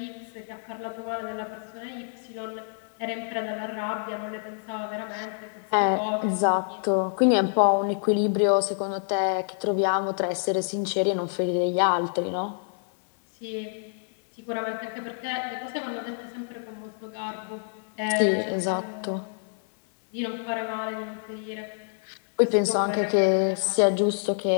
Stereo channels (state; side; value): silent; right; digital silence